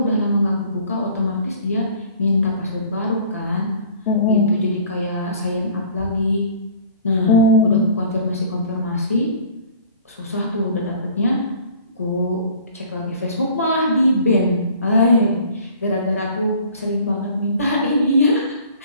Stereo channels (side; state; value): both; inverted; correlation -0.50